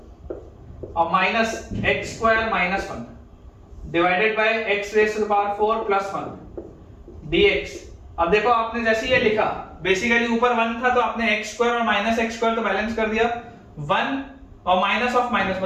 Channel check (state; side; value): identical; both; correlation 1.00